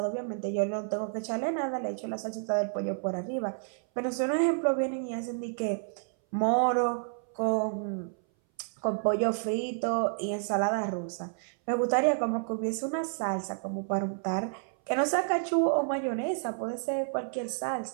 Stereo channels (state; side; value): silent; left; 58 dB below the other